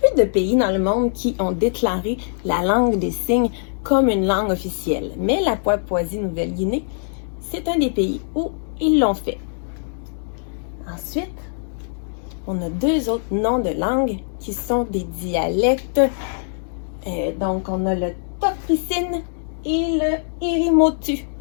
de pays dans le monde qui ont déclaré la langue des signes comme une langue officielle. Mais la Papouasie-Nouvelle-Guinée, c'est un des pays où ils l'ont fait. Ensuite, on a 2 autres noms de langues qui sont des dialectes. Donc, on a le Tokricine et le Irimotu.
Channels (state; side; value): silent; right; digital silence